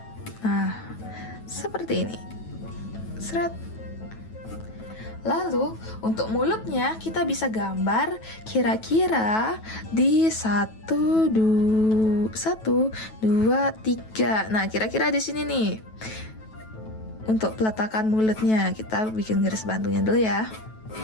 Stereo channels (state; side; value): late; right; 9.2 ms